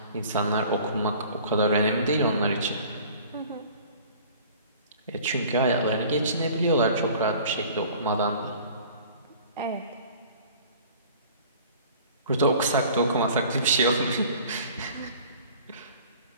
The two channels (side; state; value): both; inverted; correlation -0.48